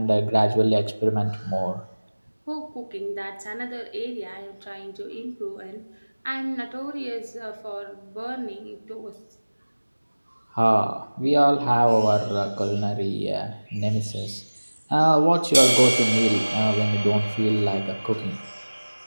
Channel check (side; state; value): both; inverted; correlation -1.00